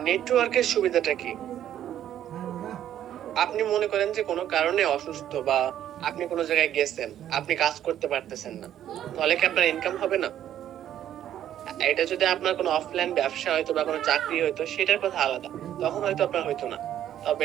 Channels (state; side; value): quieter; left; 11.1 dB